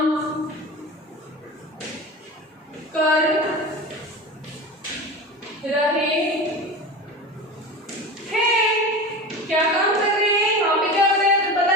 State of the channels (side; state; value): both; normal; correlation 0.30